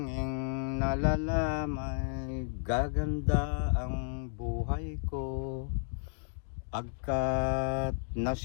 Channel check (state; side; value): silent; right; digital silence